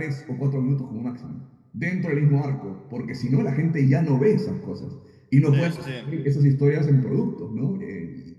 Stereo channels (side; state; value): both; identical; correlation 1.00